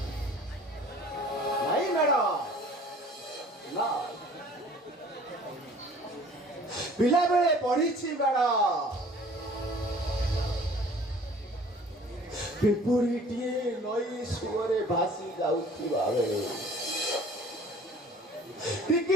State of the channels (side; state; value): both; normal; correlation 0.50